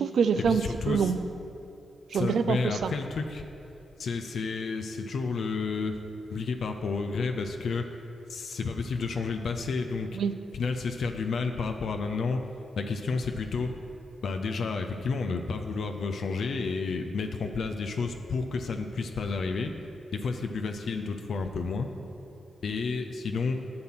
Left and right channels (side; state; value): both; normal; correlation 0.78